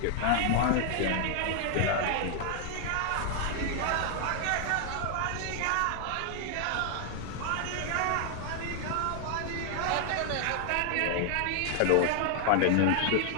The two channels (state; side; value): different; both; correlation 0.00